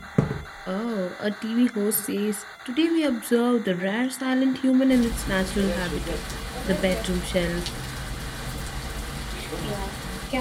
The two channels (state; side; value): identical; both; correlation 1.00